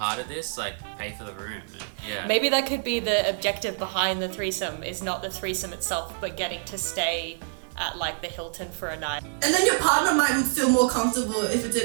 of this? Like, pay for the room. And, yeah. Maybe that could be the objective behind the threesome, is not the threesome itself, but getting to stay at like the Hilton for a night. And then your partner might feel more comfortable if it's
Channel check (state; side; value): silent; left; digital silence